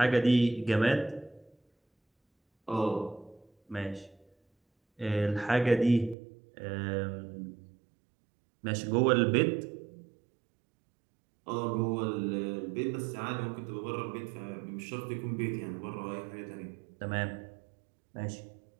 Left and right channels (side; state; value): left; drops out; at 6.2 s